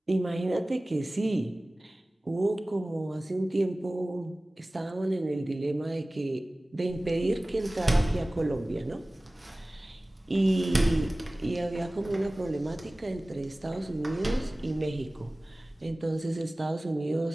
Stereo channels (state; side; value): normal; both; correlation 0.98